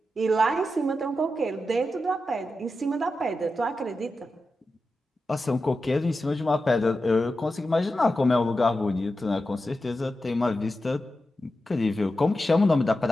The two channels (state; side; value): normal; both; correlation 0.90